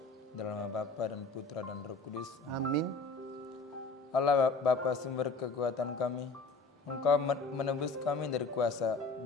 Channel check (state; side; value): quieter; right; 3.6 dB